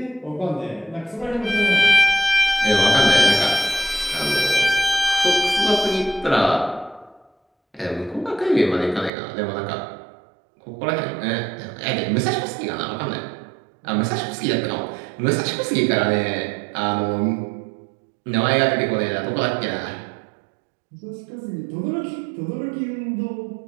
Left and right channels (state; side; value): drops out; left; at 9.1 s